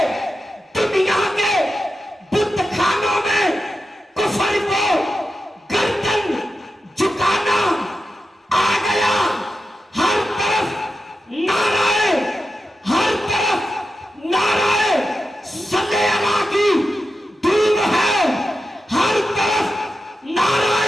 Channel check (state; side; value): normal; both; correlation 0.90